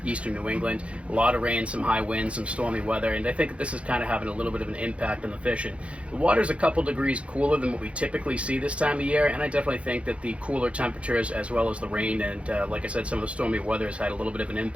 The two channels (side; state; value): left; late; 0.062 ms